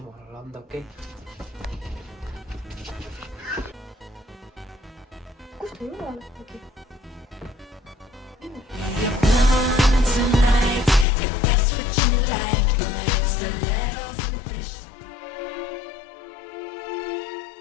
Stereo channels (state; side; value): drops out; right; at 11.1 s